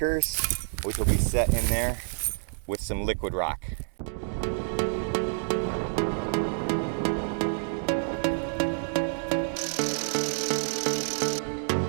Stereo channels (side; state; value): left; silent; digital silence